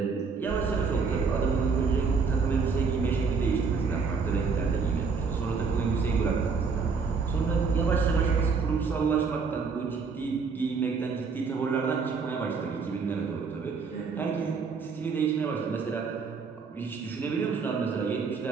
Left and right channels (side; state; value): left; quieter; 5.1 dB